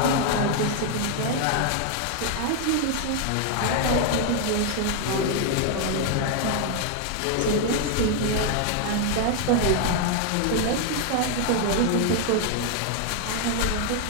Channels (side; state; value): both; different; correlation 0.00